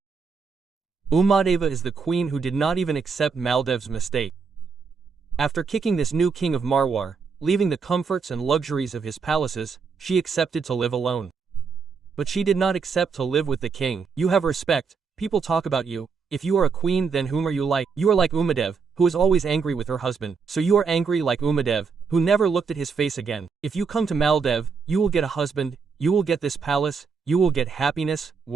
Umadeva is the queen who did not even accept Maldev's mistake. After kicking this new king of Marwar, leaving the comforts and luxuries of his palaces, she accepted to live alone. But she did not accept to live with the king. You have respect, people talk about you. If you are a queen, then whom are you like? You are like Umadev, who is always angry with her husband. So you are angry like Umadev, who never looked at his face again. If you come to Maldev, you will get a husband, you will get this palace, you will get happiness,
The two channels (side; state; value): left; quieter; 5.4 dB